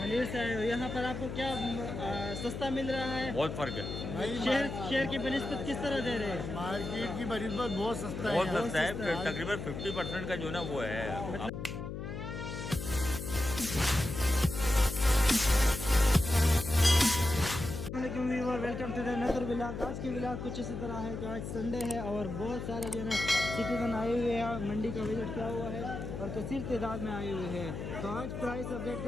से आए हो। यहाँ पर आपको क्या सस्ता मिल रहा है? बहुत फर्क है। शहर की बनिस्बत किस तरह दे रहे हैं? मार्केट की बनिस्बत बहुत सस्ता है। बहुत सस्ता है। तकरीबन 50% का जो ना वो है। Welcome to the another vlog. आज की व्लॉग कुछ इसी तरह है कि आज संडे है और बहुत सारे जो है ना सिटीजन आए हुए हैं। मंडी का विजिट किया हुआ है और कसीर तादाद में आए हुए हैं। तो आज प्राइस अपडेट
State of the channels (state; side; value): noise; left; hum, 6 dB below the sound